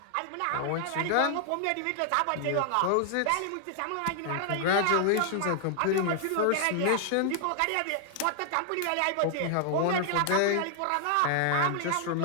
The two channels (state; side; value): different; both; correlation 0.00